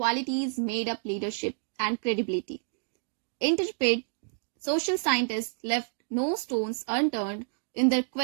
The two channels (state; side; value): silent; left; digital silence